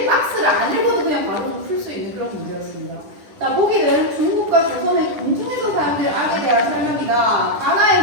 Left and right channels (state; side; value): late; left; 10 ms